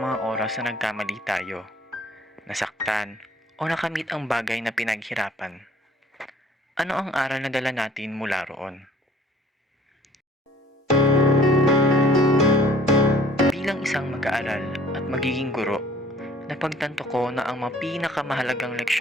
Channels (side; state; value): both; normal; correlation 0.53